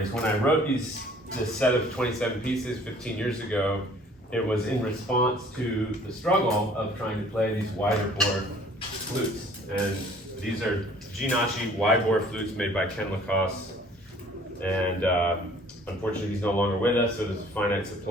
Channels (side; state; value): both; normal; correlation 0.54